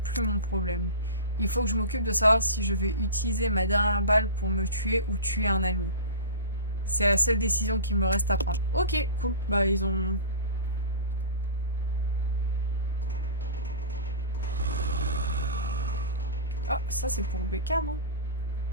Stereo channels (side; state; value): both; inverted; correlation -0.31